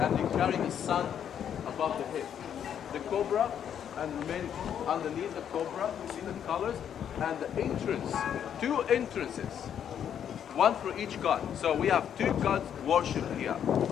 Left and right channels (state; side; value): quieter; right; 9.0 dB